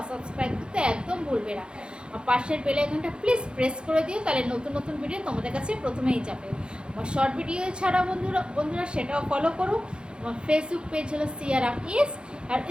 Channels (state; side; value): late; left; 0.052 ms